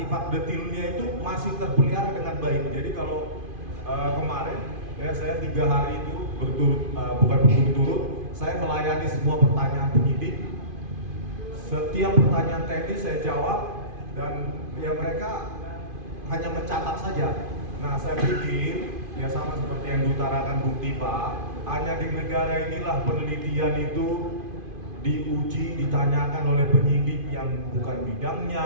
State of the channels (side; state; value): left; late; 2.5 ms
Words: detailnya itu masih terpelihara dengan baik. Jadi kalau kemarin ya saya 3 hari itu berturut-turut saya melayani semua pertanyaan penyidik. Setiap pertanyaan teknis saya jawab dan ya mereka hanya mencatat saja. Nah, saya pikir ya sama seperti yang diutarakan Bung Tifa, hanya di negara inilah penelitian itu diuji, ditanyakan oleh penyidik yang bukan